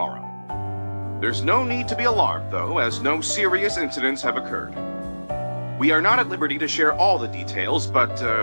There's no need to be alarmed, though, as no serious incidents have occurred. We are not at liberty to share all the details, but,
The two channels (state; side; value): inverted; both; correlation -1.00